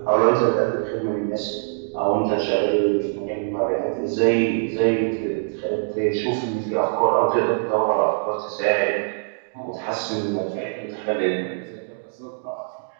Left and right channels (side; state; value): left; silent; digital silence